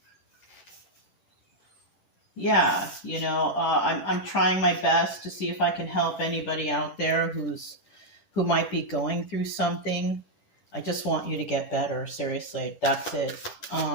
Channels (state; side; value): late; right; 10 ms